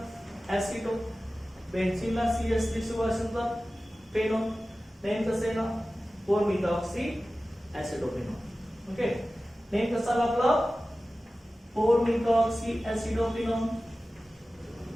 ऍसिडो बेन्झिनला CH3CO असेल तर फेनॉल नेम कसं आहे ना 4-methoxy एसिडोफेनॉल. ओके नेम कसं आलं आपलं 4-methoxy एसिडोफेनॉल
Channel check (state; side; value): normal; both; correlation 0.96